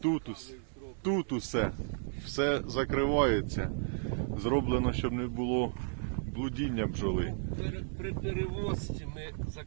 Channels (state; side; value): silent; left; digital silence